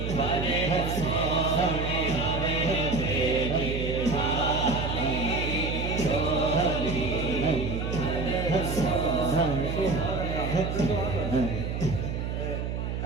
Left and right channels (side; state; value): right; noise; hum, 3 dB below the sound